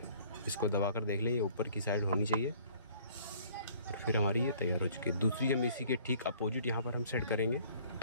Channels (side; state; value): both; inverted; correlation -0.55